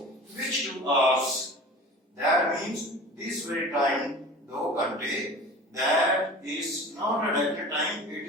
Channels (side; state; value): both; normal; correlation 0.38